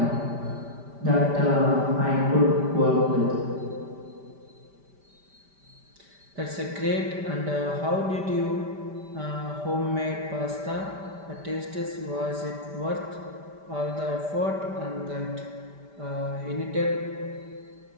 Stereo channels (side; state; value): left; late; 5.1 ms